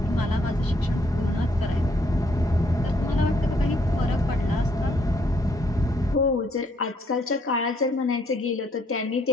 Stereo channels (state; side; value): normal; both; correlation 0.69